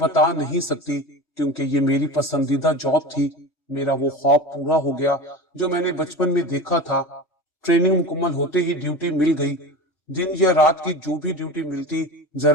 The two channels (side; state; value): right; late; 3.2 ms